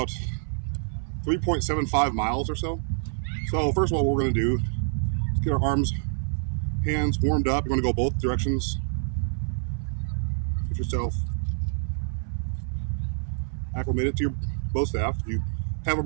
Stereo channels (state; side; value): silent; left; 60 dB below the other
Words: 3.75 miles or so. So first of all, what we're gonna do is get our arms, hands warmed up. You're gonna go both directions. Get yourself acclimated to your bow staff. If you have a